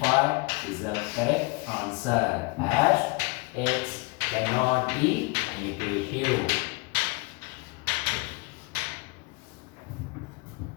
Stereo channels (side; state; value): right; quieter; 27.6 dB